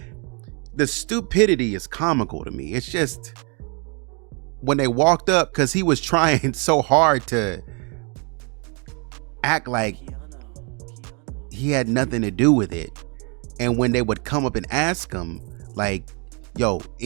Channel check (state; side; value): quieter; left; 34.7 dB